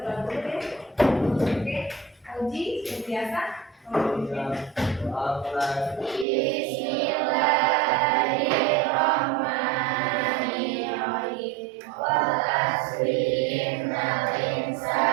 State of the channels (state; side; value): drops out; left; at 6.2 s